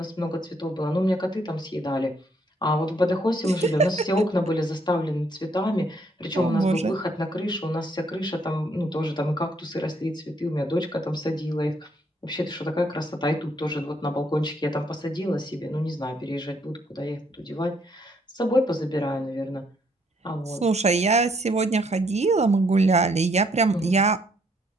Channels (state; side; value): normal; both; correlation 0.69